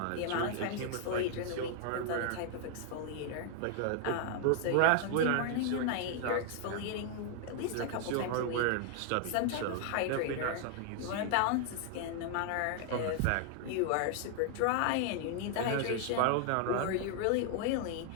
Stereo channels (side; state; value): both; different; correlation 0.00